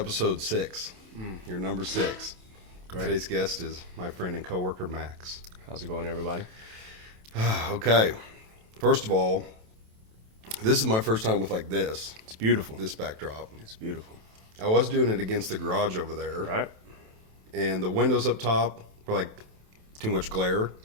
6. Your number 6. Great. Today's guest is my friend and coworker, Max. How's it going, everybody? Okay. First of all, this is my first time with like this. It's beautiful. This backdrop. It's beautiful. I was doing it against the garage over there. Right? And the windows up top were like too much glare. A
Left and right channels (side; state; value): left; late; 27 ms